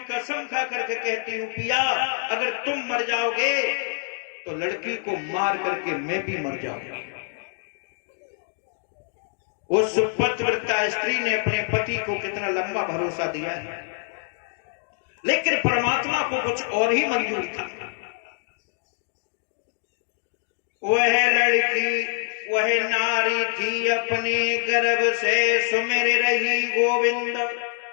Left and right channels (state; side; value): silent; right; 62 dB below the other